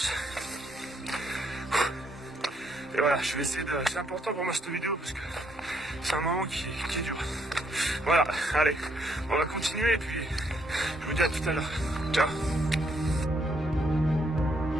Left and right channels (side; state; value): both; normal; correlation 0.72